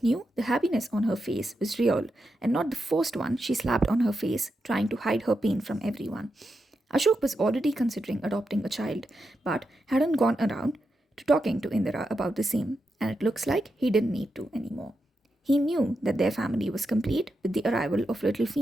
knew the happiness on her face was real and not the forced one she slapped on her face, trying to hide her pain from everyone. Ashok was already considering adopting a child, but hadn't gone around to talking to Indira about the same, and it looks like he didn't need to anymore. He knew that their family was complete with the arrival of little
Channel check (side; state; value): both; normal; correlation 0.87